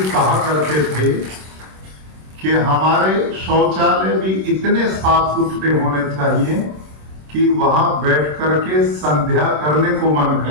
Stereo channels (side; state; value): left; late; 26 ms